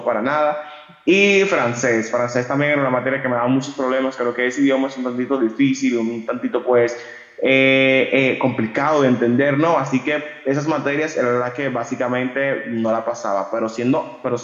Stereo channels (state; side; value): identical; both; correlation 1.00